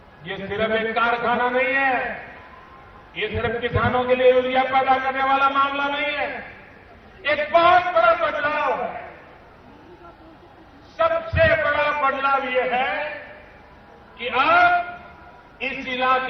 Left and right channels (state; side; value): identical; both; correlation 1.00